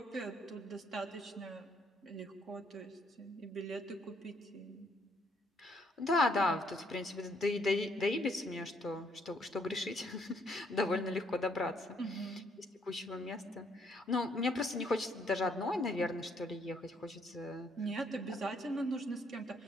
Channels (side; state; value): both; normal; correlation 0.69